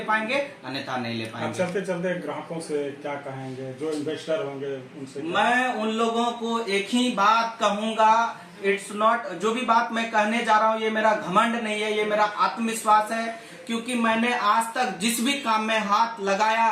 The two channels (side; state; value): both; identical; correlation 1.00